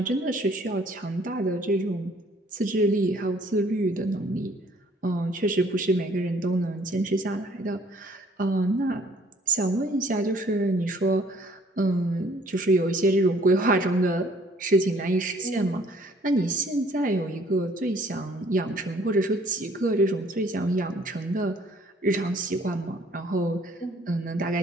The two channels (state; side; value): normal; both; correlation 0.59